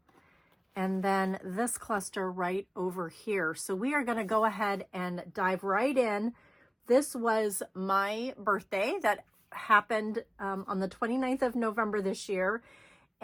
and then this cluster right over here. So we are going to go ahead and dive right in. This was my birthday that happened on the 29th of November this year.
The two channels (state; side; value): identical; both; correlation 1.00